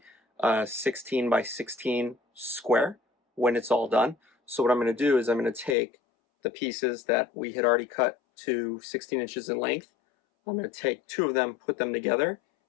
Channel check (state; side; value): drops out; right; at 5.8 s